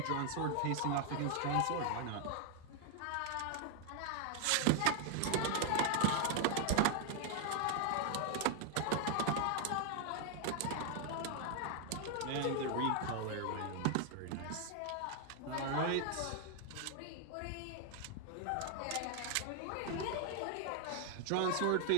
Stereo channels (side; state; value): both; different; correlation 0.00